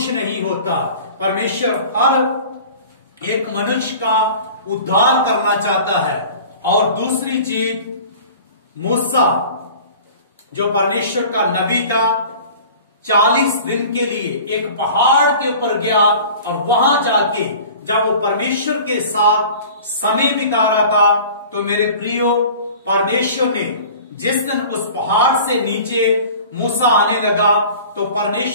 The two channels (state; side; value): inverted; both; correlation -0.43